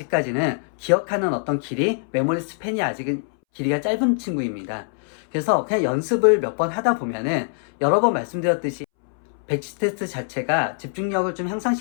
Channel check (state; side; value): silent; right; 63 dB below the other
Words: 기억하는 어떤 길이, 메모리 스팬이 아직은 길이가 짧은 친구입니다. 그래서 그냥 연습을 몇 번 하다 보면은, 여러 번 말씀드렸듯이 배치 테스트 자체가 집중력을 좀